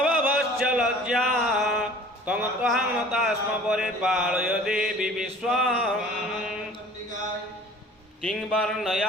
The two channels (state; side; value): normal; both; correlation 0.47